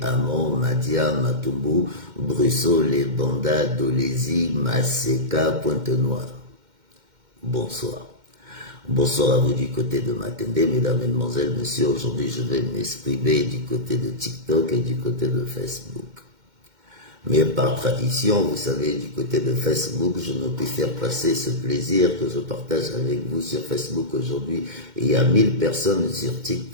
Amon, Madia, Matumbu, Brusso, Les Banda, Dolezi, Maseka, Pointe-Noire. Bonsoir. Bonsoir à vous du côté de Matende, mesdames, mesdemoiselles, messieurs. Aujourd'hui, je vais m'exprimer du côté de TikTok et du côté de Facebook. Mais par tradition, vous savez, du côté de Facebook, je ne puis faire passer ce plaisir que je partage avec vous sur Facebook aujourd'hui. Il y a 1000 personnes sur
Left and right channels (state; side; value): late; left; 2.1 ms